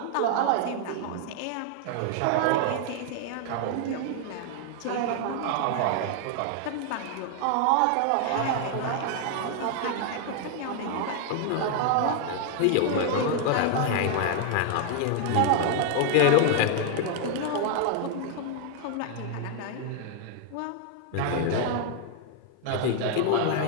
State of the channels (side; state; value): both; different; correlation 0.00